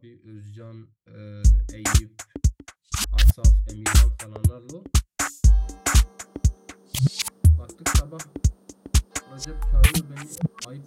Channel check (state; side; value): identical; both; correlation 1.00